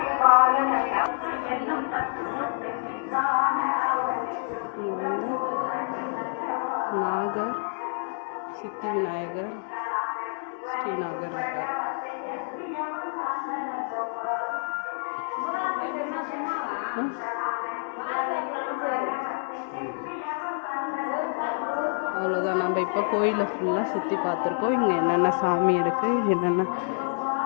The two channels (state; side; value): silent; right; 56 dB below the other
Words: இங்க வந்து நாகர், சித்தி விநாயகர், ஸ்ரீநாகர் இருக்கார். அவ்வளோதான். நம்ம இப்போ கோயிலை ஃபுல்லாக சுற்றி பார்த்துருக்கோம். இங்கே என்னென்ன சாமி இருக்குது, என்னென்ன